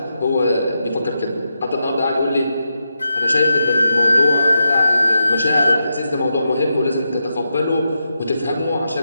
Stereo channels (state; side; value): inverted; both; correlation -0.86